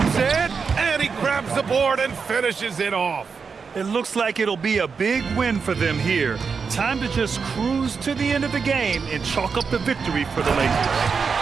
it, and he grabs the board and finishes it off. It looks like it'll be a big win for them here. Time to just cruise to the end of the game and chalk up the victory for the Lakers.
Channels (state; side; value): quieter; left; 5.5 dB